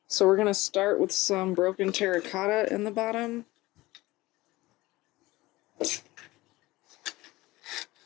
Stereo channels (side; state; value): right; quieter; 19.6 dB